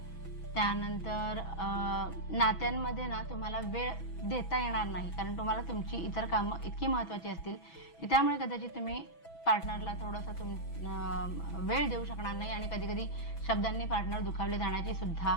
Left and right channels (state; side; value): late; right; 6.1 ms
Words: त्यानंतर नात्यांमध्ये ना तुम्हाला वेळ देता येणार नाही, कारण तुम्हाला तुमची इतर कामं इतकी महत्त्वाची असतील की त्यामुळे कदाचित तुम्ही पार्टनरला थोडंसं वेळ देऊ शकणार नाही आणि कधी कधी शब्दांनी पार्टनर दुखावले जाण्याची सुद्धा